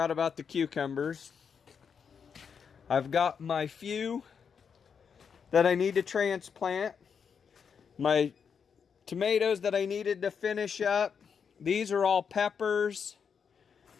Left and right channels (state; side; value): quieter; right; 6.6 dB